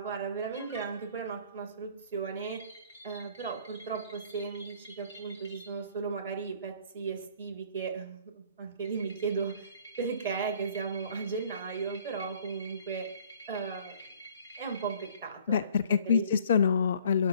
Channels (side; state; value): both; inverted; correlation -0.56